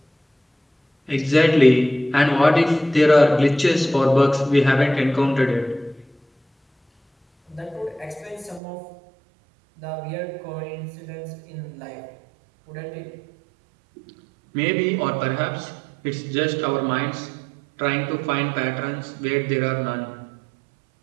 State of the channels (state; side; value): drops out; left; at 8.6 s